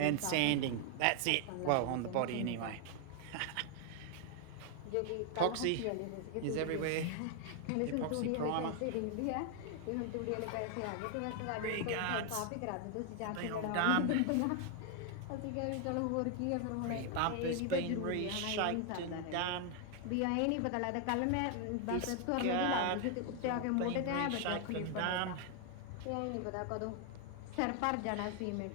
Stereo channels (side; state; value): both; different; correlation 0.00